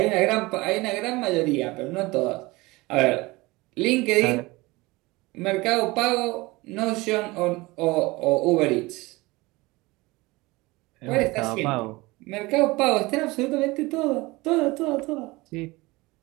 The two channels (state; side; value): quieter; left; 22.2 dB